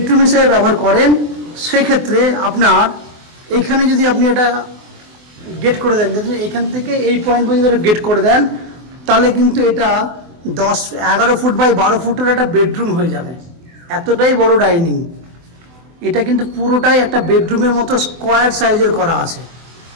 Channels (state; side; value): late; left; 24 ms